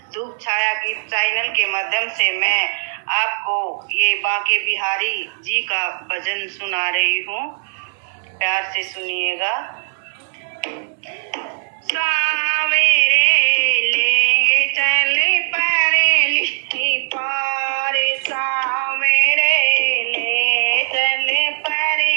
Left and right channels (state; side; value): silent; left; digital silence